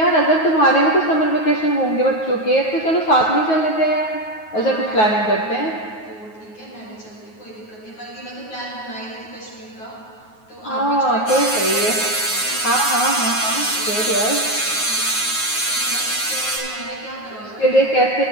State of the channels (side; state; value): right; late; 9.4 ms